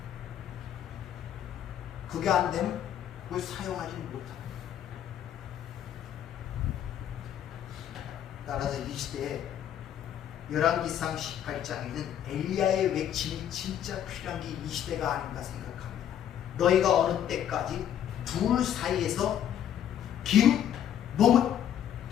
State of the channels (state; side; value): quieter; right; 10.1 dB